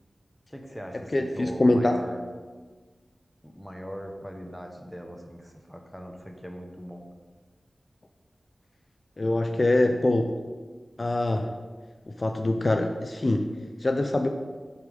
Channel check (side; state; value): both; normal; correlation 0.98